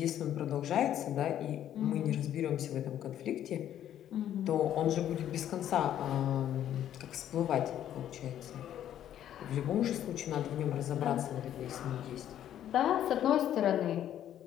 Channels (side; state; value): right; quieter; 11.0 dB